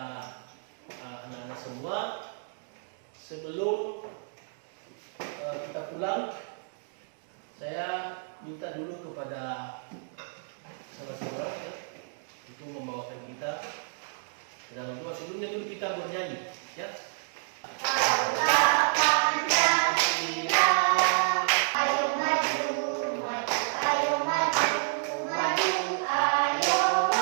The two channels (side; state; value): left; silent; digital silence